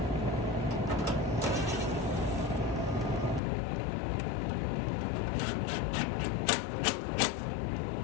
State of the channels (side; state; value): right; drops out; at 3.4 s